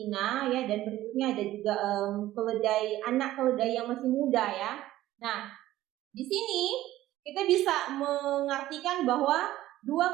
ya, dan berikutnya ada juga anak keledai yang masih muda ya. Nah, di sini kita bisa mengartikan bahwa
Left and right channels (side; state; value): left; quieter; 14.9 dB